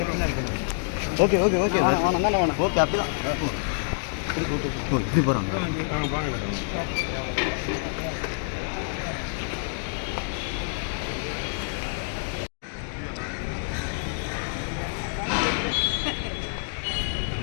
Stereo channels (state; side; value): silent; right; digital silence